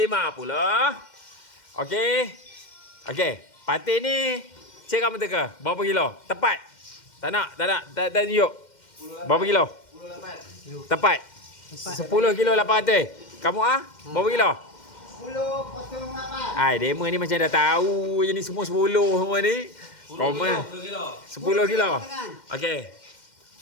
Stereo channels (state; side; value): late; right; 2.1 ms